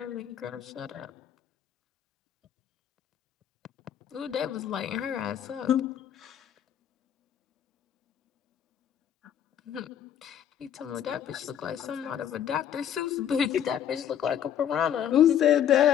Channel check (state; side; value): quieter; right; 9.6 dB